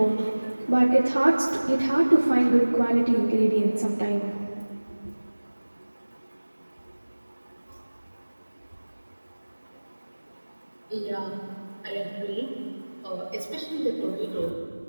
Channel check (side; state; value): both; inverted; correlation -1.00